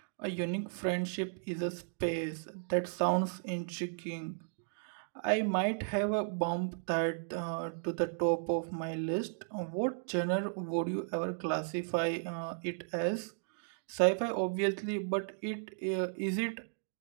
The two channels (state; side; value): silent; left; digital silence